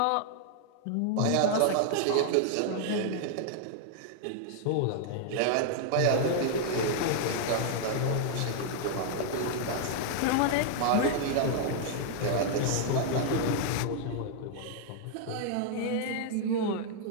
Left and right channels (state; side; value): different; both; correlation -0.01